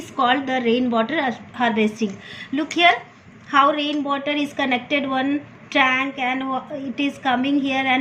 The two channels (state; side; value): identical; both; correlation 1.00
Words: called the rainwater harvesting. Look here, how rainwater is connected one tank and it is coming here